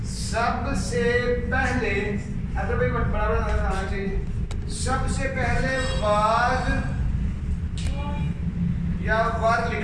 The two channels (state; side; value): identical; both; correlation 1.00